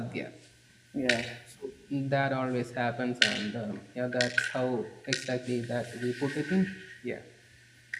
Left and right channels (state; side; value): identical; both; correlation 1.00